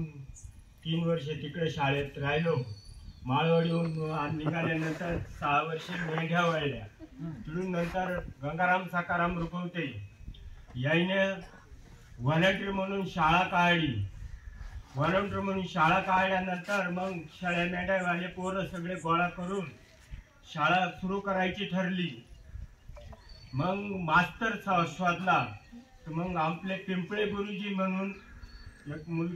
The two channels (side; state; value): both; identical; correlation 1.00